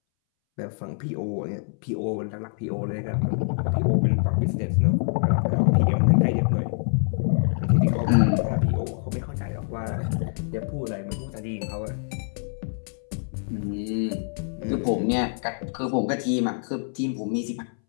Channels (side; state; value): right; silent; 61 dB below the other